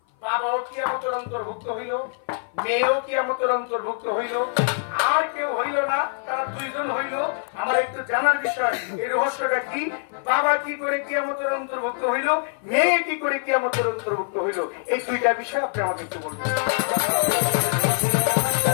বাবাও কিয়ামতের অন্তর্ভুক্ত হইল, মেয়েও কিয়ামতের অন্তর্ভুক্ত হইল, আর কেউ হইল না, তারা দুইজন হইল। আমার একটু জানার বিষয়, এই রহস্যটা কি? বাবা কি করে কিয়ামতের অন্তর্ভুক্ত হইল, মেয়ে কি করে কিয়ামতের অন্তর্ভুক্ত হইল? এই দুইটা বিষয় আপনি আমাকে একটু বলবেন।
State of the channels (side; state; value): right; silent; 56 dB below the other